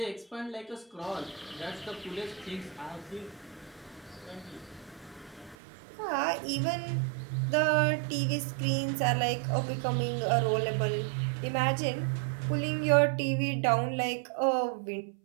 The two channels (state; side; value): drops out; left; at 5.6 s